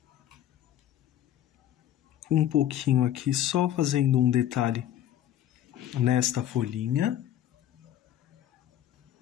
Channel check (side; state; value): right; quieter; 11.6 dB